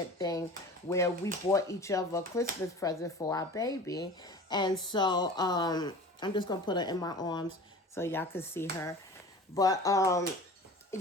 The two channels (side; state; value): both; normal; correlation 0.39